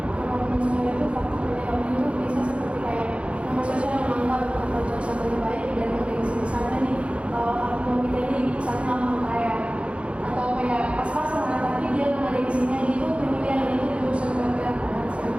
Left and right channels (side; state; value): left; late; 0.060 ms